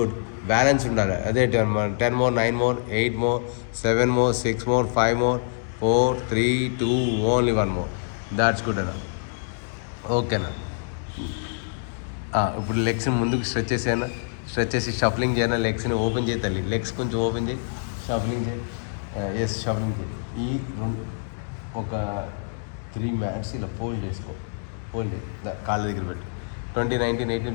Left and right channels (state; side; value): silent; right; digital silence